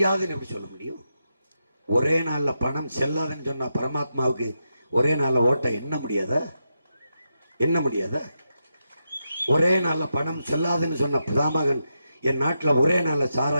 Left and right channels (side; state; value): both; inverted; correlation -0.86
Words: எப்படி சொல்ல முடியும்? ஒரே நாள்ல பணம் செல்லாதுன்னு சொன்ன பரமாத்மாவுக்கு ஒரே நாள்ல ஓட்ட என்ன முடியாதா? என்ன முடியாதா? ஒரே நாள்ல பணம் செல்லாதுன்னு சொன்ன பிதாமகன் என் நாட்டில் ஒரே நாள்ல